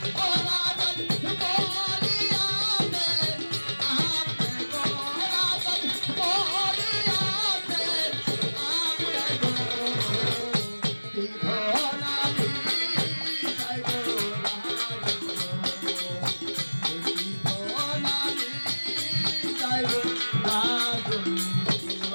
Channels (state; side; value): inverted; both; correlation -1.00